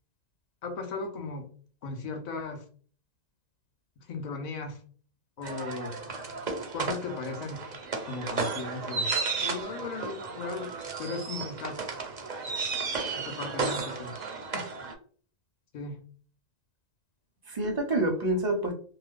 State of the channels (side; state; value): right; late; 1.9 ms